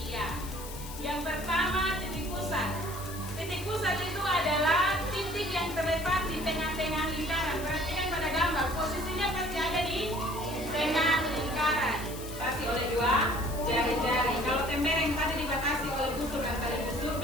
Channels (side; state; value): left; noise; hiss, 13 dB below the sound